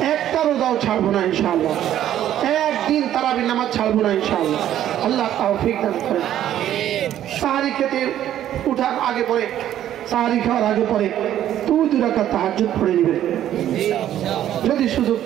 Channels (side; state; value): left; quieter; 11.6 dB